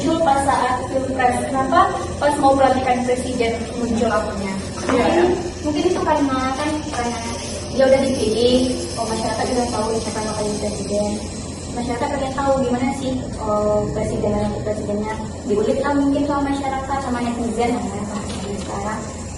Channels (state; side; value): identical; both; correlation 1.00